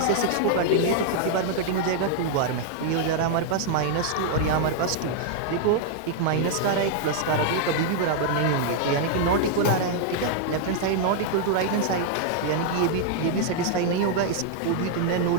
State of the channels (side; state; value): both; different; correlation 0.00